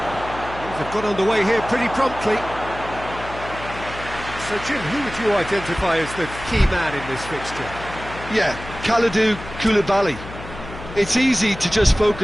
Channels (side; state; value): left; noise; hum, 13 dB below the sound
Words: Things have got underway here pretty promptly. So, Jim, who would you identify as the key man in this fixture? Yeah, Kalidou Koulibaly. It's easy to just